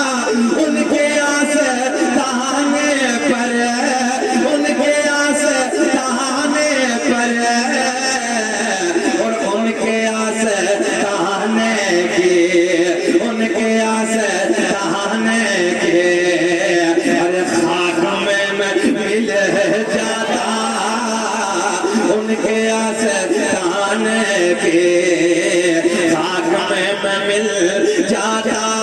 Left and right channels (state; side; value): identical; both; correlation 1.00